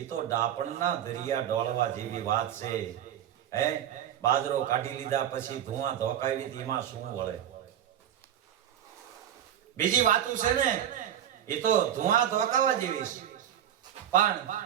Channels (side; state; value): left; quieter; 10.5 dB